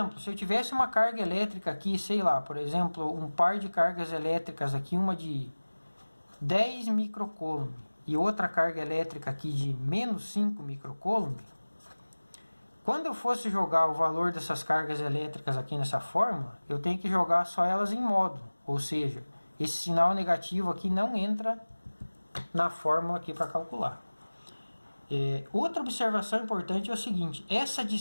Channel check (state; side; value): inverted; both; correlation -1.00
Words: se eu tivesse uma carga elétrica aqui, sei lá, por exemplo, um par de cargas elétricas aqui, uma de 10 microcoulomb e outra carga elétrica aqui de menos 5 microcoulomb, quando eu fosse jogar o valor dessas cargas elétricas aqui nessa fórmula, eu tenho que jogar só elas em módulo, ou seja, esse sinal negativo aqui não entra na fórmula aqui para calcular. Outra observação importante é o seguinte, essa